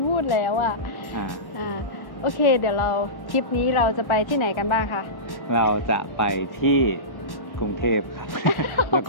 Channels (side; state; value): right; late; 1.1 ms